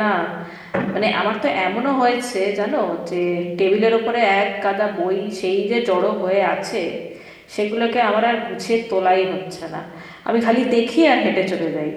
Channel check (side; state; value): both; identical; correlation 1.00